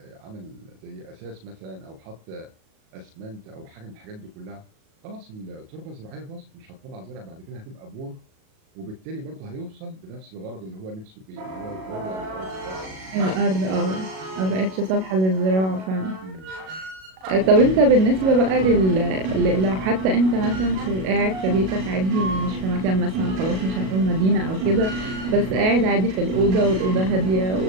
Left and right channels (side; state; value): left; late; 37 ms